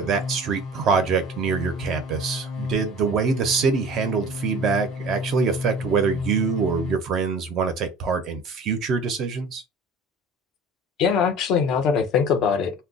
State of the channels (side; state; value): both; normal; correlation 0.42